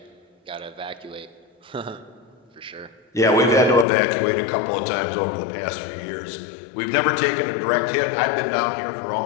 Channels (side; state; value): right; drops out; at 3.9 s